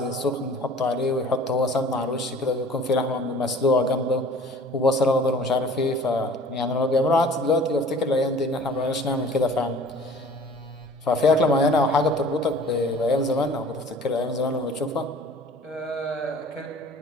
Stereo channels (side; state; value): both; normal; correlation 0.48